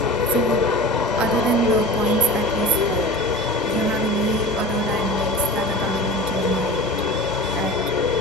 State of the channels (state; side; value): normal; both; correlation 0.34